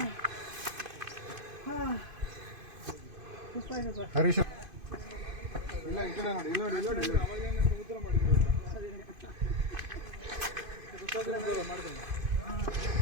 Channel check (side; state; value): left; late; 2.5 ms